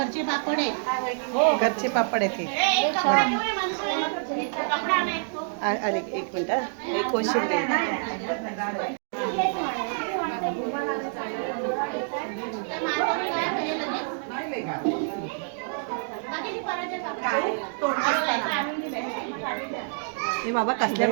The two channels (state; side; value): silent; left; digital silence